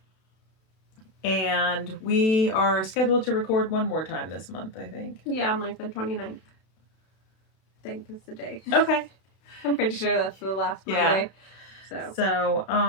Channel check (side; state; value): right; late; 32 ms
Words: And we are scheduled to record one more time this month, I think. Yeah, on like the 29th. I think is the day. Okay. I'm pretty sure that's the last Monday. So,